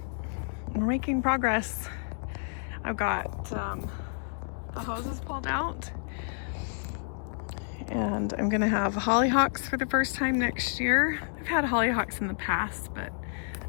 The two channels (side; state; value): right; silent; 58 dB below the other